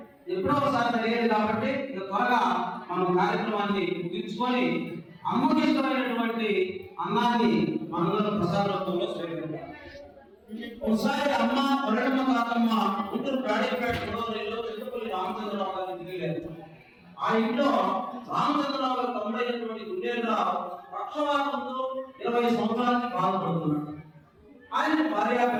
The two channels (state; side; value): identical; both; correlation 1.00